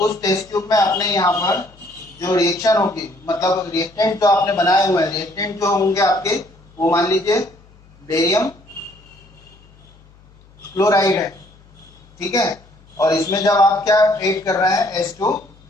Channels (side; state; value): left; noise; hum, 27 dB below the sound